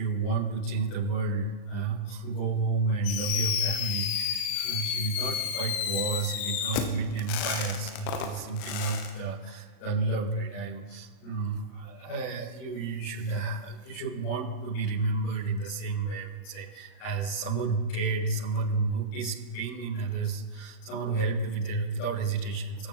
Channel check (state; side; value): late; right; 38 ms